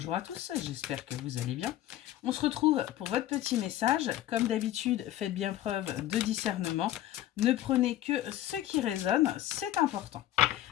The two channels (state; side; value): quieter; right; 13.5 dB